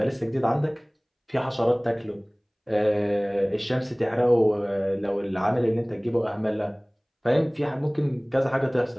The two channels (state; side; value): identical; both; correlation 1.00